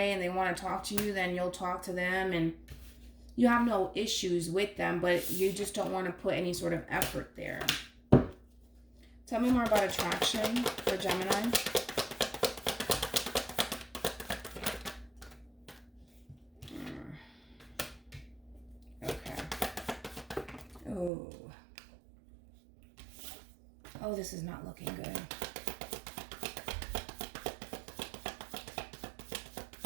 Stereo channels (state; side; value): drops out; left; at 21.1 s